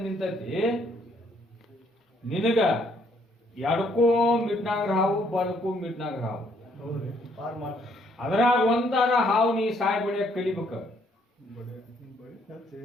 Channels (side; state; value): both; normal; correlation 0.68